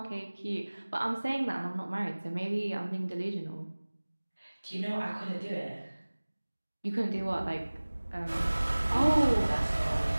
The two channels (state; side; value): inverted; both; correlation -1.00